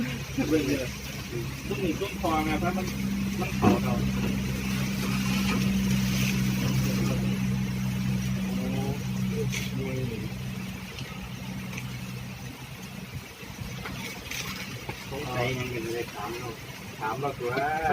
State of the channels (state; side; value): identical; both; correlation 1.00